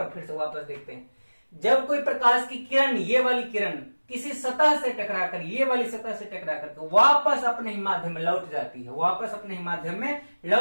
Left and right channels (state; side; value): inverted; both; correlation -1.00